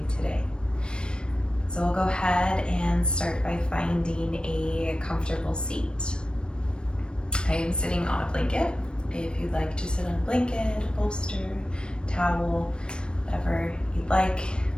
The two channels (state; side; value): late; right; 0.053 ms